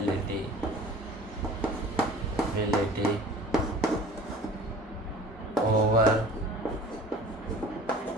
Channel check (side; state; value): both; normal; correlation 0.44